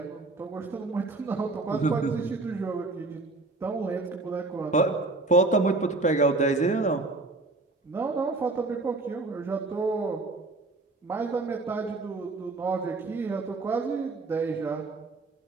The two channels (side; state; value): left; quieter; 3.3 dB